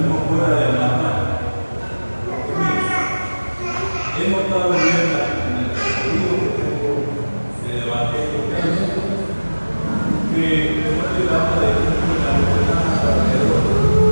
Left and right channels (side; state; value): both; inverted; correlation -1.00